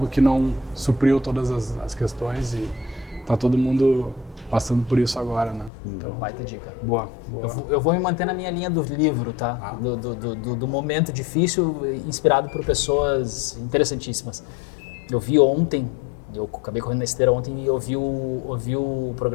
que não supriu todas as questões e está todo mundo passando por isso agora, né? Então, baita dica. Boa. Eu vou me manter na minha linha do livro, tá? Do momento difícil, inspirado por pessoas interessantíssimas. Eu vi ontem, eu acabei correndo na esteira ontem e ouvi o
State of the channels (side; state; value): right; drops out; at 5.7 s